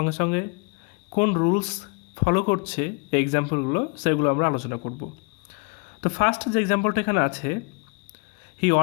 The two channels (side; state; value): right; quieter; 33.0 dB